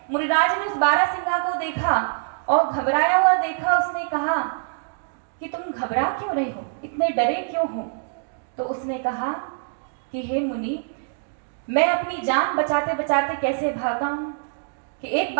मुनिराज ने उस बारहसिंगा को देखा और घबराया हुआ देखा। उसने कहा कि तुम घबरा क्यों रहे हो, इतने डरे क्यों हो? तो उसने कहा कि हे मुनि, मैं अपनी जान बचाते बचाते कैसे भागा हूं कि एक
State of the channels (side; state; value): left; silent; digital silence